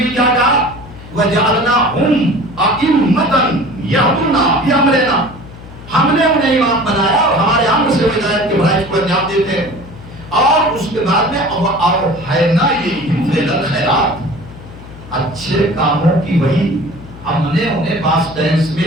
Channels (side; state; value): left; noise; hum, 17 dB below the sound